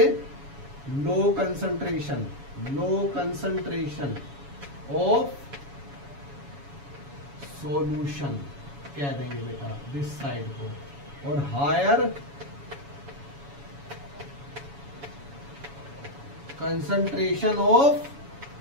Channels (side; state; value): left; late; 7.1 ms